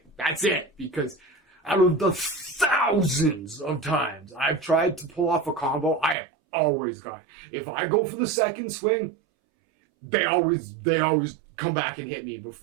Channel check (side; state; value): left; drops out; at 6.2 s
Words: That's it. Because out of the thousands of times I've tried to pull off a combo, I have always got it. If I go for the second swing, they always come back and hit me